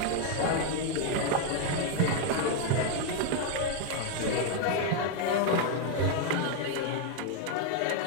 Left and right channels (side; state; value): both; different; correlation 0.01